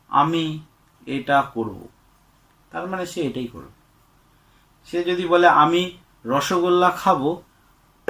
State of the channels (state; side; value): identical; both; correlation 1.00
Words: আমি এটা করব, তার মানে সে এটাই করবে। সে যদি বলে আমি রসগোল্লা খাবো,